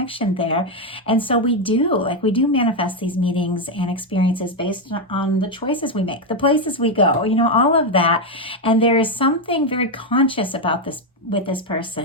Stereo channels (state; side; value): normal; both; correlation 0.05